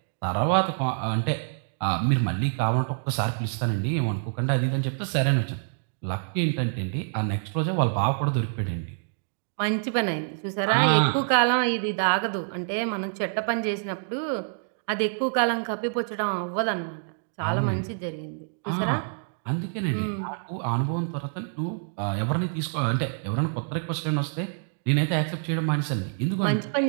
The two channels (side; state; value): left; silent; digital silence